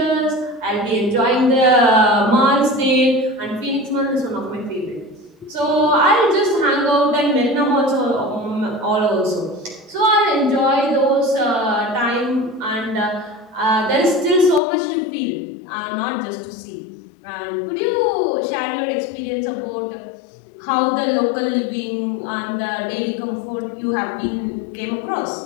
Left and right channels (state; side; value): drops out; right; at 14.6 s